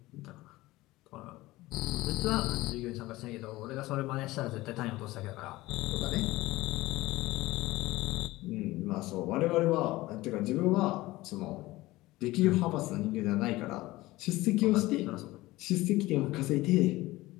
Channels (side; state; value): right; quieter; 18.8 dB